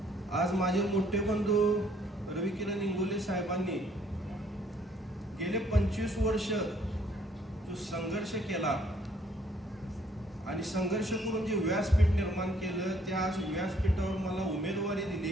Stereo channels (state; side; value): normal; both; correlation 0.64